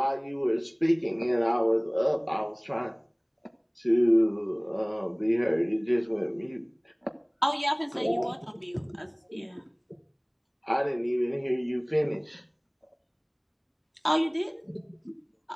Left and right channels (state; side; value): identical; both; correlation 1.00